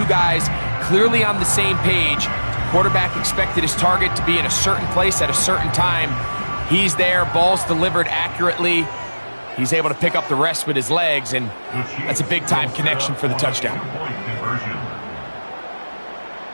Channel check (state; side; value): inverted; both; correlation -1.00